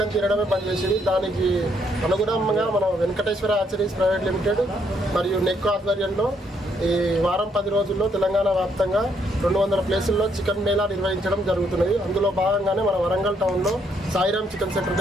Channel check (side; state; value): both; normal; correlation 0.72